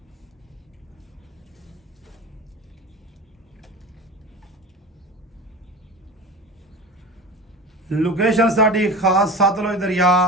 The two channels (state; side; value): normal; both; correlation 0.32